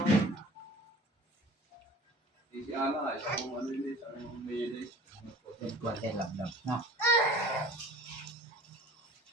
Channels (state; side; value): normal; both; correlation 0.43